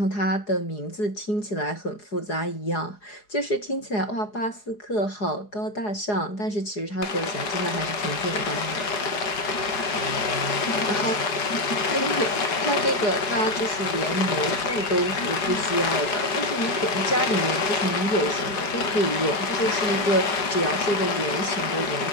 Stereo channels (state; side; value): late; right; 4.8 ms